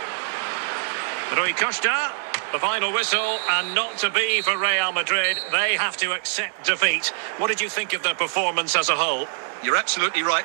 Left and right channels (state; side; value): silent; left; 63 dB below the other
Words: Rui Costa, the final whistle, and not to be for Real Madrid. They have to accept defeat. What did you think of their performance as a whole? You're absolutely right,